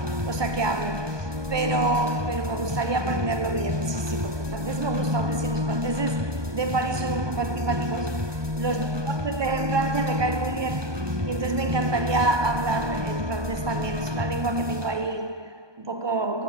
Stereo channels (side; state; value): left; late; 1.2 ms